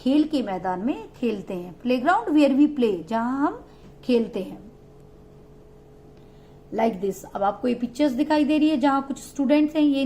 के मैदान में खेलते हैं। Play ground where we play, जहां हम खेलते हैं। लाइक दिस, अब आपको ये पिक्चर्स दिखाई दे रही है जहां कुछ स्टूडेंट्स हैं, ये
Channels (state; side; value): identical; both; correlation 1.00